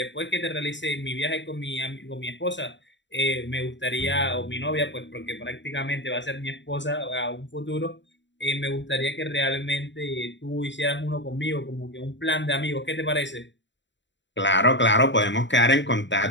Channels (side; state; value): right; late; 0.53 ms